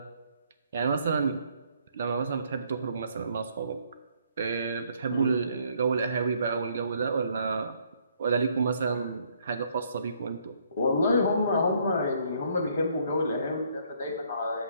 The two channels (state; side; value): inverted; both; correlation -0.67